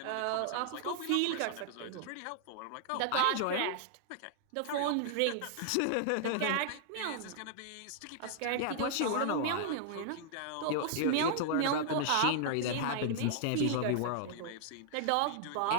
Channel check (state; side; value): different; both; correlation -0.01